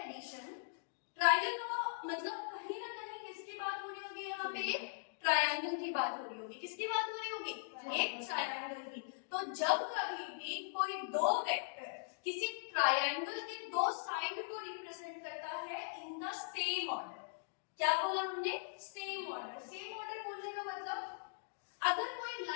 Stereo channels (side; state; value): right; silent; digital silence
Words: addition, triangle law मतलब कहीं ना कहीं किसकी बात हो रही होगी? यहाँ पे ट्रायंगल की बात हो रही होगी। किसकी बात हो रही होगी? एक ट्रायंगल की। तो जब कभी भी कोई दो वेक्टर किसी ट्रायंगल के दो साइड को रिप्रेजेंट करता है इन द सेम ऑर्डर, क्या बोला हमने? Same order. सेम ऑर्डर बोलने का मतलब अगर कोई